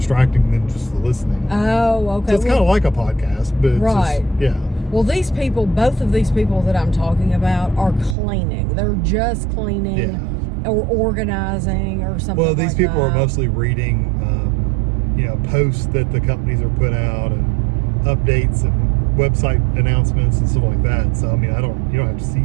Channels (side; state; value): left; drops out; at 8.2 s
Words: than just the listening. Oh, okay. So it's kind of like a podcast, but it's right. just, yeah. Well, these people, both of these people that I'm talking about, are cleaning. They're just cleaning or organizing or something. Well, these like people that. are mostly reading, posts that the companies are put out, and updates and website announcements and stuff like that. So I mean, you don't have to